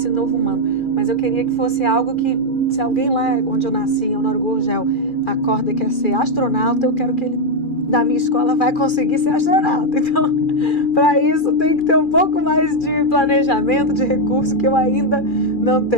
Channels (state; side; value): late; right; 2.4 ms